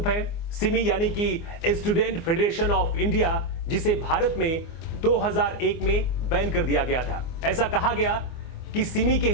है। सिमी यानी कि स्टूडेंट फेडरेशन ऑफ इंडिया, जिसे भारत में 2001 में बैन कर दिया गया था। ऐसा कहा गया कि सिमी के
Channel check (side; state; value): right; late; 24 ms